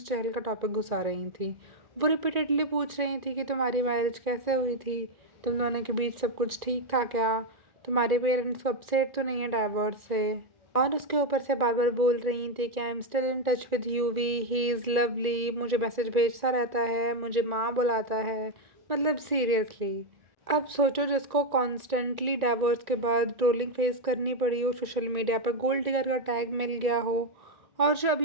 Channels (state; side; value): late; left; 1.9 ms